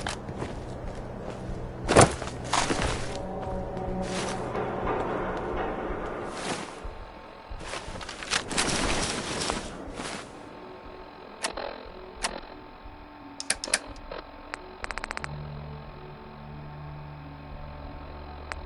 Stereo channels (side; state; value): both; identical; correlation 1.00